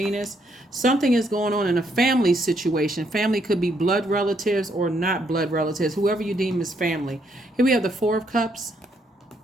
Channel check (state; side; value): normal; both; correlation 0.73